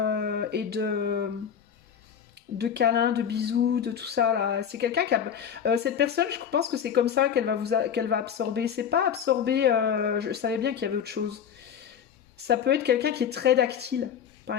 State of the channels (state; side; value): quieter; right; 8.2 dB